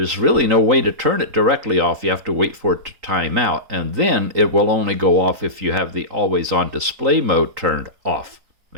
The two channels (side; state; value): left; late; 3.8 ms